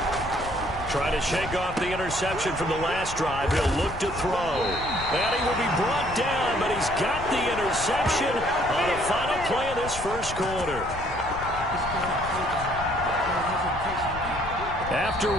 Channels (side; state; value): left; noise; rumble, 11 dB below the sound